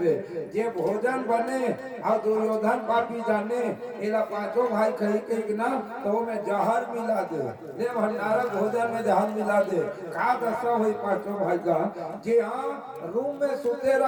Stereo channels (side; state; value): both; identical; correlation 1.00